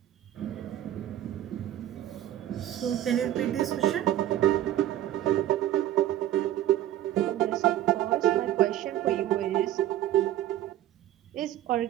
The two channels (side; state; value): left; quieter; 12.7 dB